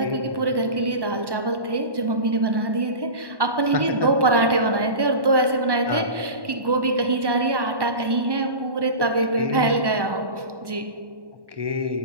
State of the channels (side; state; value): left; late; 1.1 ms